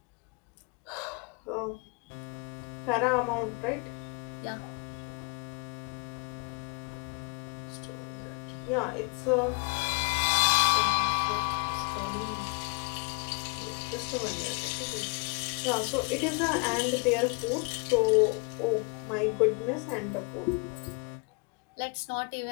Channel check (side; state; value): right; quieter; 32.2 dB